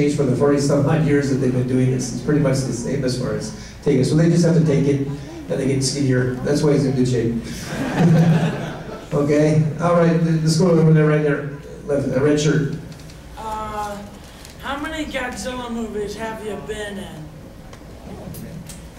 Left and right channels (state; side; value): identical; both; correlation 1.00